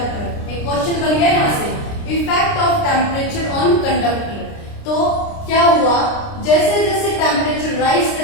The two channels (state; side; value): late; right; 29 ms